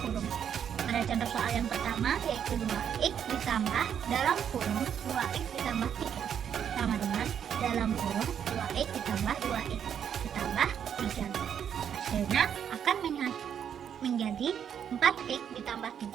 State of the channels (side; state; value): left; quieter; 8.5 dB